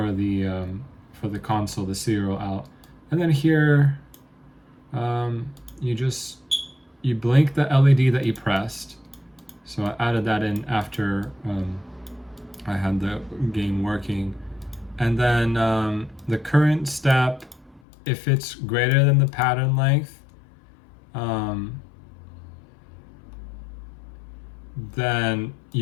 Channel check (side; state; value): right; drops out; at 17.8 s